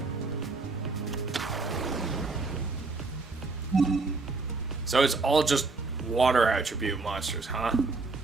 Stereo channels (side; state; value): left; quieter; 3.8 dB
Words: So it's all just water attribute monsters, huh?